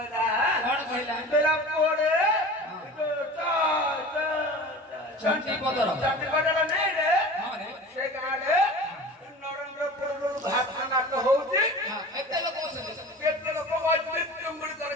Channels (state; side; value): normal; both; correlation 0.37